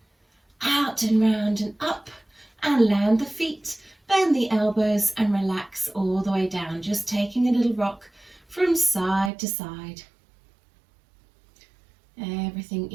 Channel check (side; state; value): left; drops out; at 9.3 s